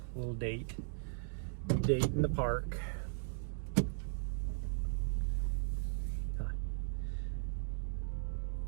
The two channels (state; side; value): silent; left; digital silence